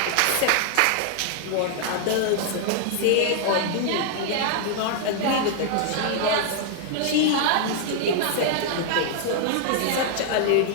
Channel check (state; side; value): different; both; correlation 0.00